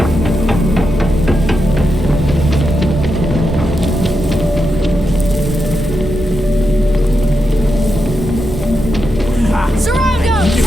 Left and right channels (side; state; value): both; normal; correlation 0.86